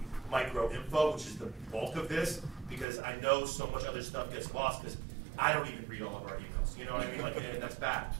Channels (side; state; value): left; drops out; at 2.9 s